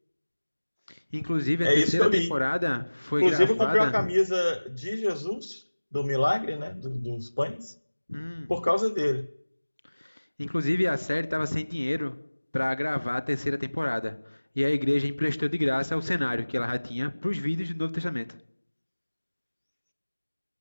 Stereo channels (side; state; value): both; inverted; correlation -1.00